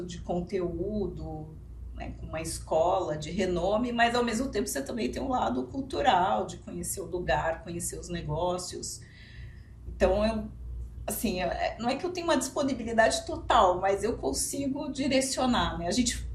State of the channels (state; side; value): identical; both; correlation 1.00